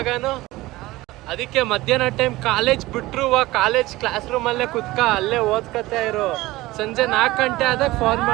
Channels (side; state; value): left; quieter; 18.7 dB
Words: ಗಾನು? ಅದಕ್ಕೆ ಮಧ್ಯಾಹ್ನ ಟೈಮ್ ಕಾಲೇಜ್ ಬಿಟ್ರು ಕಾಲೇಜ್ ಕ್ಲಾಸ್ ರೂಮಲ್ಲೇ ಕುತ್ಕ ಅಲ್ಲೇ ಓದ್ಕತಾ ಇರು. ಸಂಜೆ 4 ಗಂಟೆ ಆದಾಗ ಫೋನ್